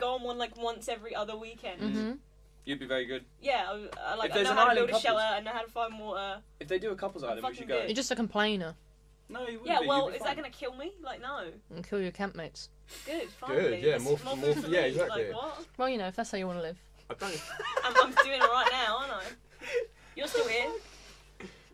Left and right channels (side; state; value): both; identical; correlation 1.00